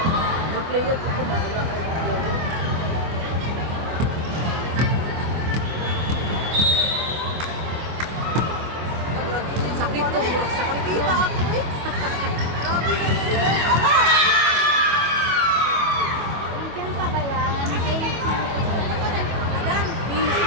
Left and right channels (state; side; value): late; left; 25 ms